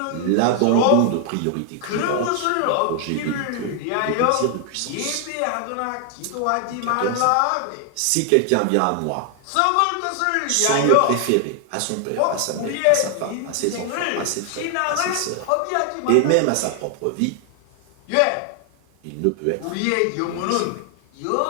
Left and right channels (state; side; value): different; both; correlation 0.00